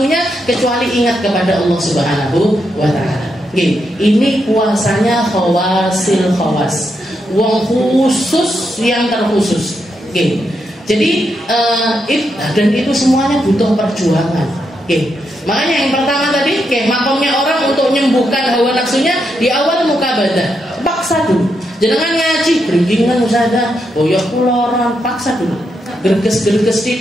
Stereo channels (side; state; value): both; normal; correlation 0.82